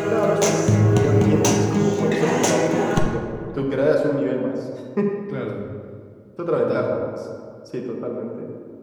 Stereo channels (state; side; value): identical; both; correlation 1.00